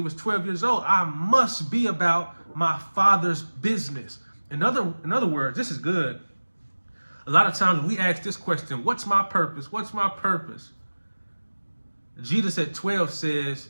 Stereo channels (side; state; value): both; inverted; correlation -1.00